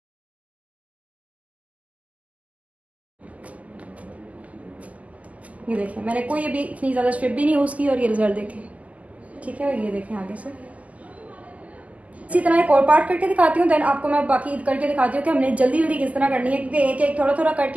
ये देखें, मैंने कोई अभी इतनी ज़्यादा स्ट्रिप भी नहीं यूज़ की और ये रिज़ल्ट देखें, ठीक है। और ये देखें आगे से इसी तरह एक और पार्ट करके दिखाती हूँ, देन आपको मैं बाकी करके दिखाती हूँ कि हमने जल्दी जल्दी किस तरह करनी है, क्योंकि एक एक थोड़ा थोड़ा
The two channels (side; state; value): left; late; 0.073 ms